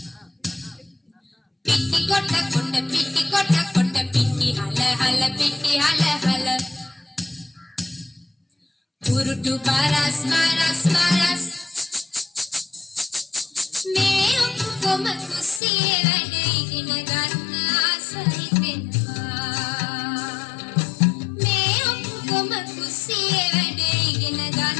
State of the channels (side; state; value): right; drops out; at 15.6 s